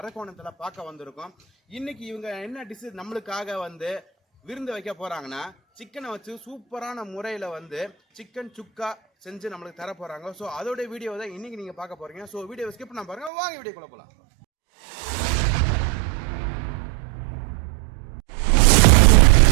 பார்க்க வந்திருக்கோம். இன்னைக்கு இவங்க என்ன டிஷ் நம்மளுக்காக வந்து விருந்து வைக்க போகிறாங்கன்னா, சிக்கனை வச்சு சூப்பரான முறையில் வந்து சிக்கன் சுக்கா செஞ்சு நம்மளுக்கு தர போகிறாங்க. ஸோ அதோட வீடியோ தான் இன்னைக்கு நீங்கள் பார்க்க போகிறீங்க. ஸோ வீடியோ ஸ்கிப் பண்ண பாருங்க, வாங்க வீடியோக்குள்ள போகலாம்.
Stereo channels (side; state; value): left; drops out; at 13.3 s